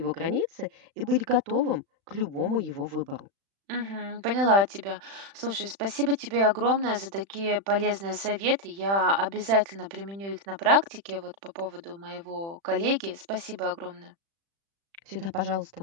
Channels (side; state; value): left; late; 36 ms